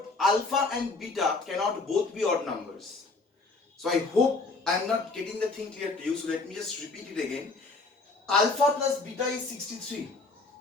alpha and beta cannot both be odd numbers. So I hope I am not getting the thing clear to you. So let me just repeat it again. Alpha plus beta is 63.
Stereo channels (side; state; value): right; quieter; 3.6 dB